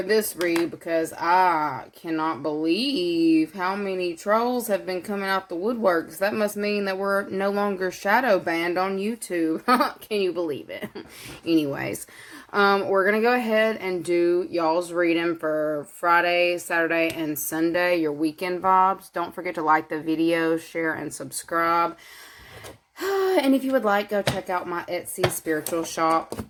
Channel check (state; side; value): identical; both; correlation 1.00